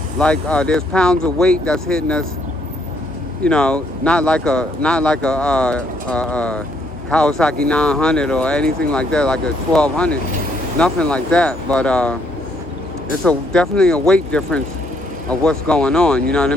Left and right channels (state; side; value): normal; both; correlation 0.70